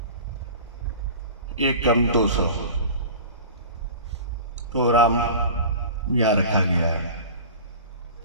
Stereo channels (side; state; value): both; inverted; correlation -0.37